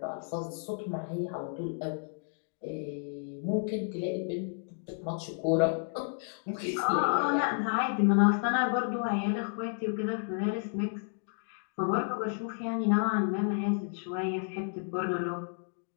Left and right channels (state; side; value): silent; right; 57 dB below the other